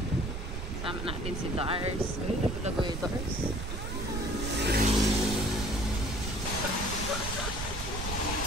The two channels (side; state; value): right; noise; rumble, 5 dB below the sound